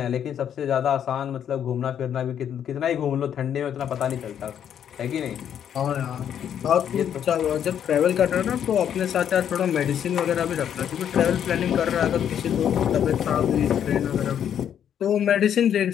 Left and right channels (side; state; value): right; quieter; 9.2 dB